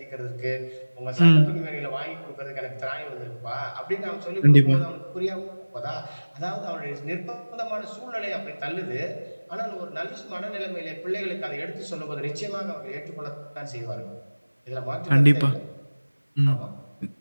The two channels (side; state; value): both; inverted; correlation -1.00